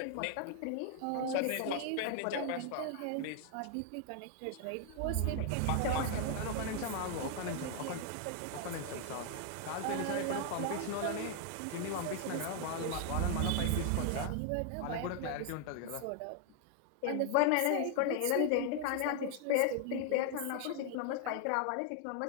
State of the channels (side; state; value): both; different; correlation 0.00